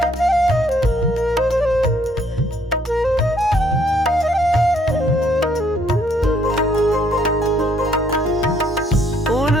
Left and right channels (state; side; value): normal; both; correlation 0.66